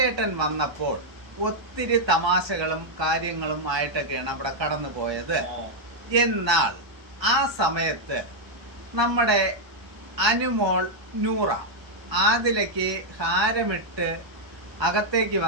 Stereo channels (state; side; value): late; left; 1.2 ms